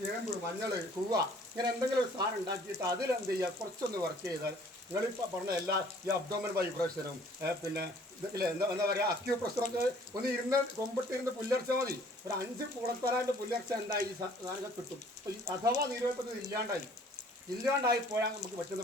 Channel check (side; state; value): both; normal; correlation 0.56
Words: ചേമ്പ്, മഞ്ഞൾ, കൂവ, ഇങ്ങനെ എന്തെങ്കിലും ഒരു സാധനം ഉണ്ടാക്കിയിട്ട് അതിലെന്ത് ചെയ്യുക? കുറച്ചൊന്ന് വർക്ക് ചെയ്താൽ നിങ്ങളിപ്പോൾ പറഞ്ഞ എല്ലാ ഈ അബ്ഡോമൻ വൈബ്രേഷനും പിന്നെ ഇല്ലേ എന്താ പറയുക അക്യൂപ്രഷറൊക്കെ ഒന്ന് ഇരുന്ന് കൊമ്പിട്ടിരുന്ന് പുല്ലർച്ച മതി. ഒരു 5 കുളത്തലാൻ്റെ പുല്ലർച്ച എന്തായി ഈ സാധനങ്ങൾ കിട്ടും. അപ്പോൾ ഈ അഥവാ നീരുവെപ്പത് ഇല്ലാണ്ടായി പോയാൽ നമുക്ക് പറ്റുന്ന